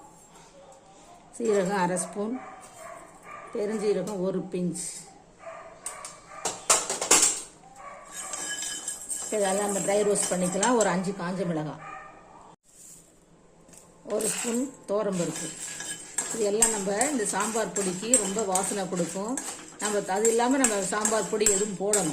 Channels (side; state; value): both; identical; correlation 1.00